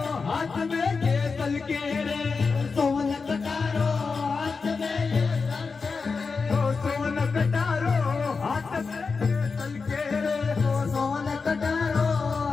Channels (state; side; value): quieter; right; 4.7 dB